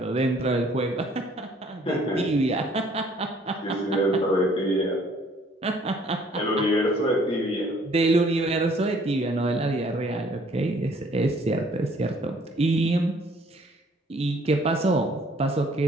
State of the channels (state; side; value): normal; both; correlation 0.60